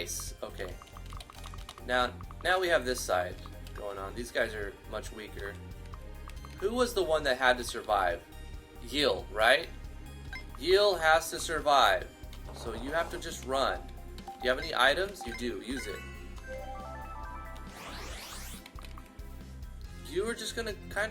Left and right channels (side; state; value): both; identical; correlation 1.00